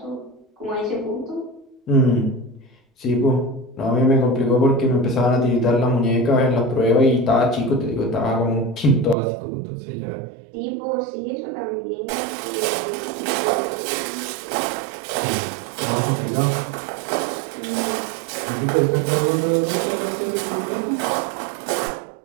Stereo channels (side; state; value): left; drops out; at 9.2 s